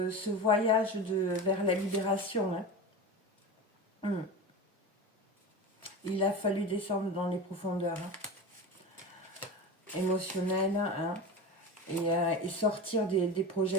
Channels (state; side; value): normal; both; correlation 0.27